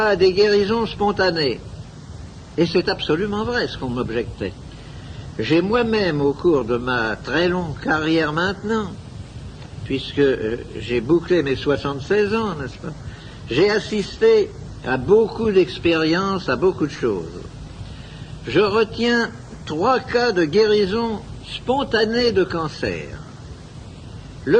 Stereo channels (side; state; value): both; identical; correlation 1.00